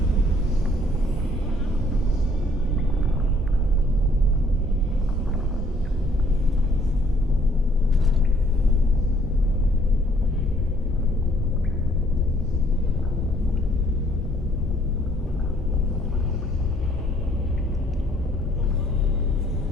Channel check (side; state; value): both; normal; correlation 0.63